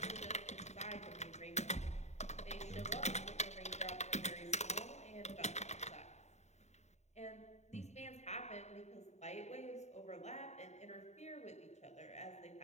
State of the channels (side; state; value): right; late; 0.32 ms